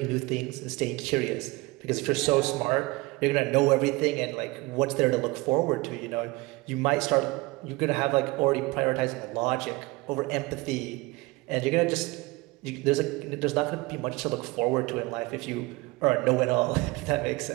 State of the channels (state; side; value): quieter; left; 22.6 dB